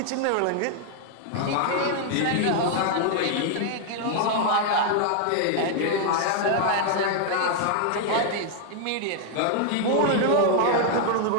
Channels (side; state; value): both; different; correlation 0.00